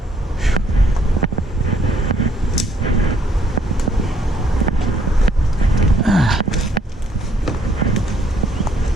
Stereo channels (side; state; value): both; normal; correlation 0.67